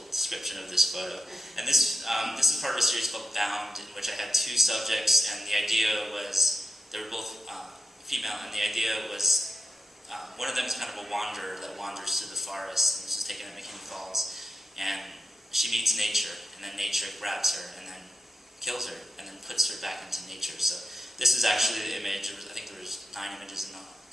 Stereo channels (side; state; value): both; normal; correlation 0.86